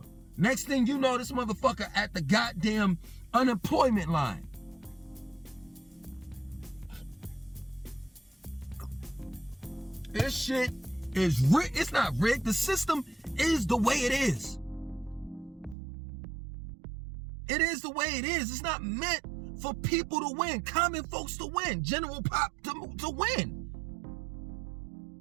Next thing you know, this motherfucker at the goddamn unemployment line. This shit is rigged. It's not rigged. The system is the way it is. It is the way it is. It's not meant for people to win, common folks to win, general pop to win.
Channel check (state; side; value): drops out; left; at 15.8 s